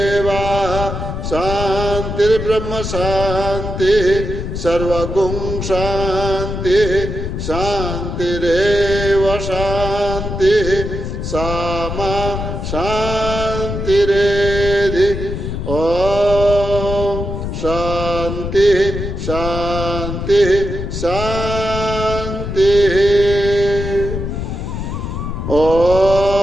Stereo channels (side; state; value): left; noise; rumble, 5 dB below the sound